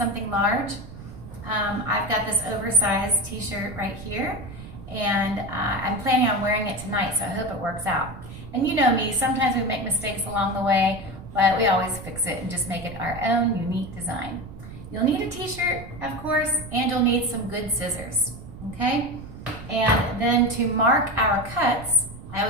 large. I've got this oversized t-shirt right here, and I'm planning on wearing it tonight, so I hope it works out. And you know me, sometimes we make mistakes along the way, but we always fix it and just make it our own unique design. You'll need a t-shirt, of course, and you'll need some good scissors, okay? And then to mark our cuts, I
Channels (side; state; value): right; noise; rumble, 14 dB below the sound